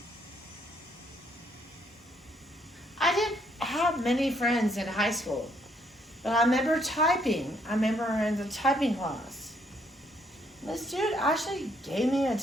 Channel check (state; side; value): normal; both; correlation 0.70